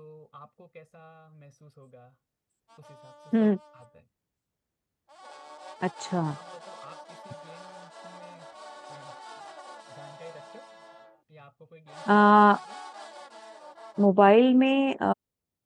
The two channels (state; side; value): identical; both; correlation 1.00